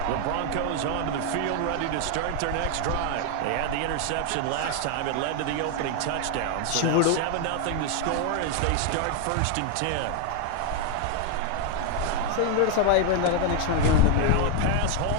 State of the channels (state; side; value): different; both; correlation 0.01